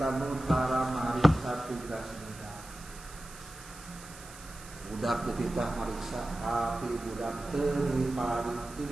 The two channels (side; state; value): right; noise; hiss, 17 dB below the sound